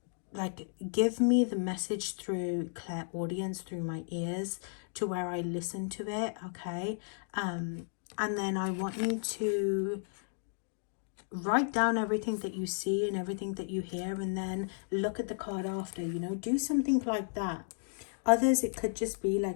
like give me the message through clairaudience, through my ears, to where I listen to it, okay? And then I want you to write down everything that you see and everything that you hear, and then look at the card after, you know, do something like that. Others, it could just be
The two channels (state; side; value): silent; right; digital silence